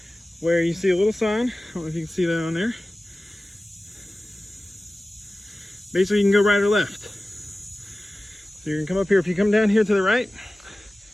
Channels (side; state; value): both; normal; correlation 0.96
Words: where you see a little sign. I don't know if you can see that on there. Basically, you can go right or left. So you can come up here. If you come down here to the right,